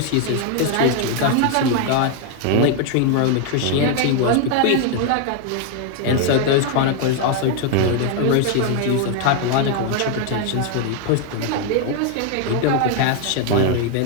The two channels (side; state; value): both; different; correlation 0.00